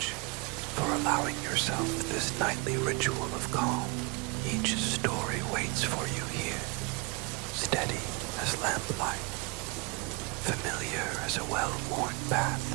for allowing yourself this nightly ritual of calm. Each story waits for you here, steady as lamplight, familiar as a well-worn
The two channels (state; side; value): quieter; left; 28.6 dB